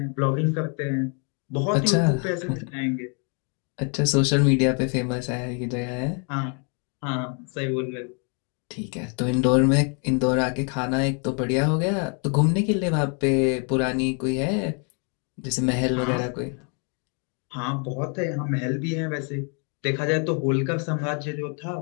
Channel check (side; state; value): right; quieter; 38.3 dB